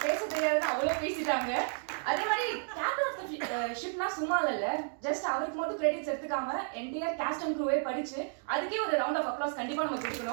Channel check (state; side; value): silent; left; 56 dB below the other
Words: பேச தெரியாதுன்னு அவ்வளோ பேசிட்டாங்க. அதே மாதிரி captain of the ஷிப்னா சும்மா இல்ல, just அவருக்கு மட்டும் கிரெடிட்ஸ் எடுத்துக்காம என்டையர் காஸ்ட் அண்ட் க்ரூவே படிச்சு அதுக்கே ஒரு ரவுண்ட் ஆஃப் அப்ளாஸ் கண்டிப்பா நம்ம